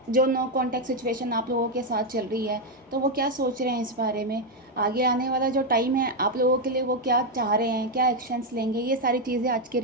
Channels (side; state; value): both; normal; correlation 0.03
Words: जो नो कॉन्टैक्ट सिचुएशन आप लोगों के साथ चल रही है, तो वो क्या सोच रहे हैं इस बारे में। आगे आने वाला जो टाइम है आप लोगों के लिए, वो क्या चाह रहे हैं, क्या एक्शंस लेंगे, ये सारी चीज़ें आज की